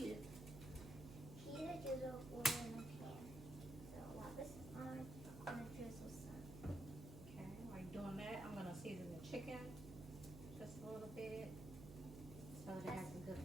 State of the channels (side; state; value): right; noise; hum, 10 dB below the sound